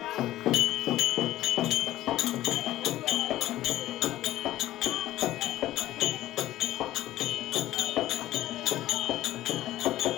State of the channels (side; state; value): right; quieter; 14.8 dB